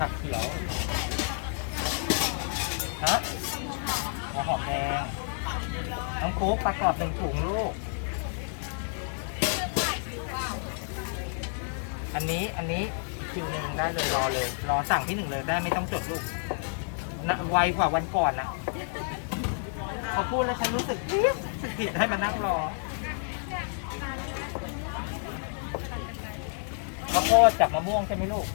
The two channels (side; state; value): right; silent; 58 dB below the other